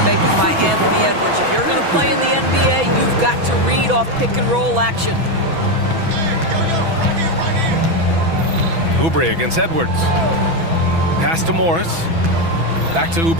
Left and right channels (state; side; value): late; left; 6.1 ms